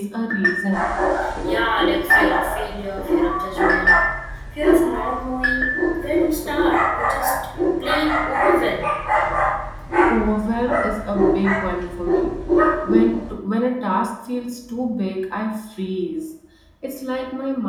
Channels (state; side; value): identical; both; correlation 1.00